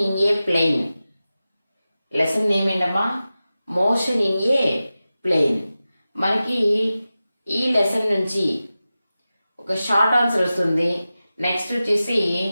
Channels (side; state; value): both; inverted; correlation -0.94